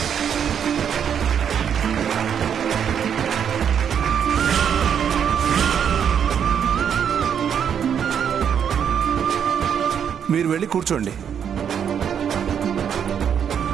మీరు వెళ్ళి కూర్చోండి.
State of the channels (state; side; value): quieter; left; 8.2 dB